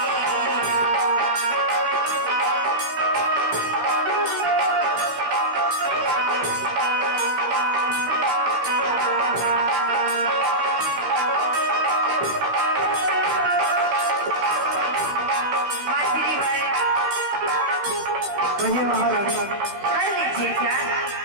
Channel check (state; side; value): late; left; 15 ms